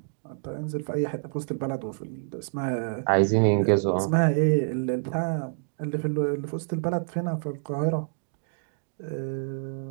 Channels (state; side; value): silent; left; digital silence